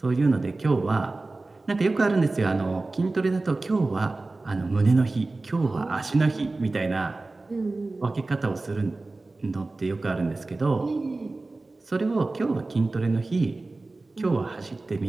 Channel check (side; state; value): left; quieter; 3.3 dB